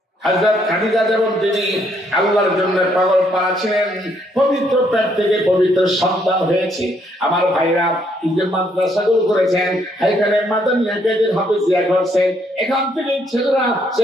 হযরত খাদিজা যেমন তিনি আল্লাহর জন্য পাগল পারা ছিলেন, পবিত্র পেট থেকে পবিত্র সন্তান হয়েছে। আমার ভাইরা এই যে মাদ্রাসাগুলো করেছেন, এখানে মাদানিয়া কেদের হাফেজিয়া করছেন, এখান থেকে ছেলেরা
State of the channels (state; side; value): normal; both; correlation 0.71